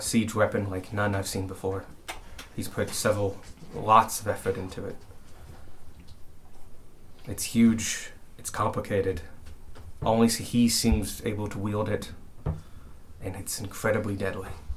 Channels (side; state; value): both; identical; correlation 1.00